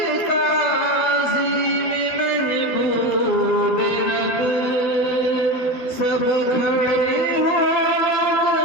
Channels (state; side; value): late; right; 12 ms